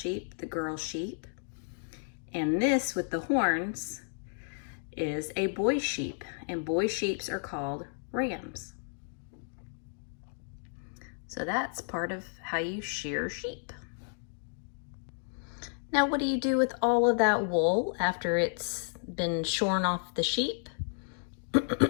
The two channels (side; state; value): right; silent; digital silence